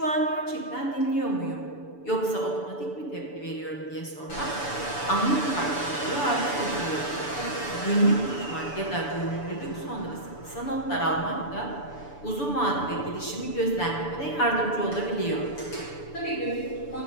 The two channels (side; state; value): right; late; 6.9 ms